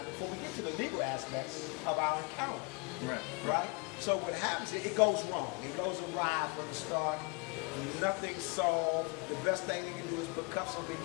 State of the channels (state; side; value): quieter; right; 30.8 dB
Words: before we get to the legal aspects of our encounter. Right? So what happens is it goes wrong. It goes awry from the start. Nothing's solved. The best thing you can do is put cuffs on me,